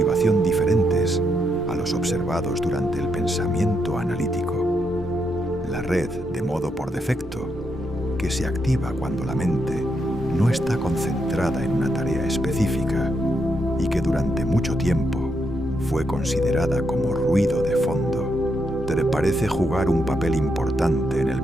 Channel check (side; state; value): both; normal; correlation 0.80